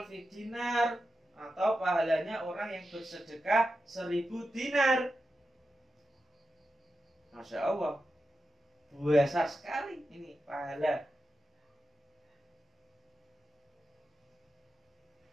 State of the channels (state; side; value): normal; both; correlation 0.90